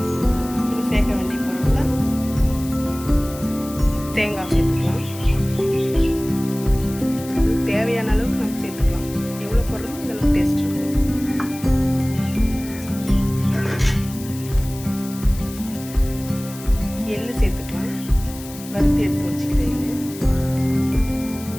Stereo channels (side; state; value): left; noise; hiss, 15 dB below the sound